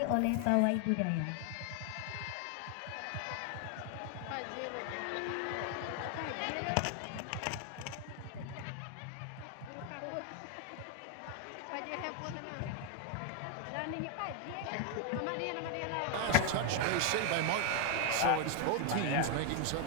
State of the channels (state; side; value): different; both; correlation 0.01